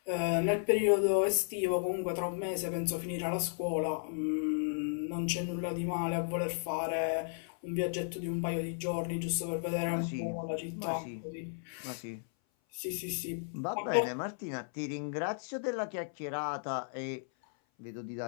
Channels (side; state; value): right; silent; 55 dB below the other